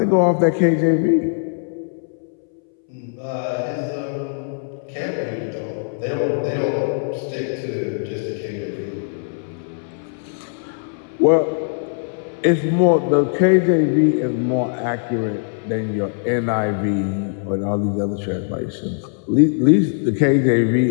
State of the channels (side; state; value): right; silent; 63 dB below the other